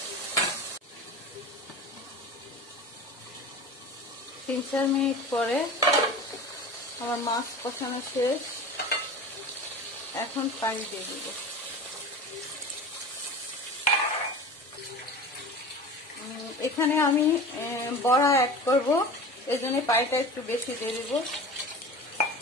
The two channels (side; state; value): both; normal; correlation 0.34